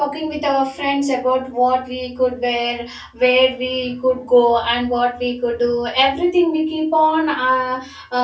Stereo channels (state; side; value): identical; both; correlation 1.00